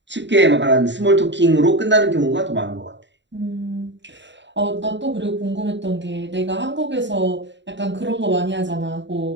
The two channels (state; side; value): late; left; 0.52 ms